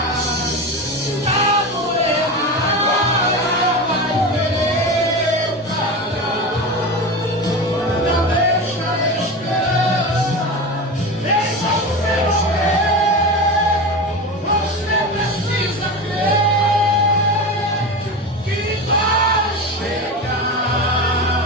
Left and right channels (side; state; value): both; normal; correlation 0.24